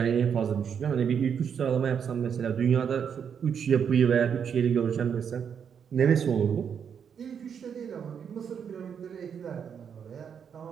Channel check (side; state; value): left; quieter; 7.5 dB